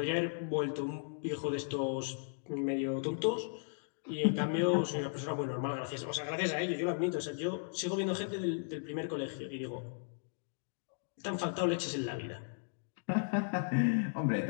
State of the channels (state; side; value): silent; right; digital silence